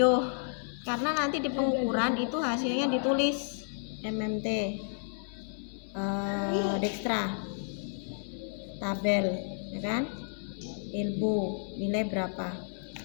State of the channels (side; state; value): right; silent; 57 dB below the other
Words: Karena nanti di pengukuran itu hasilnya ditulis MMT, dextra, tabel, ya kan? Elbow, nilai berapa?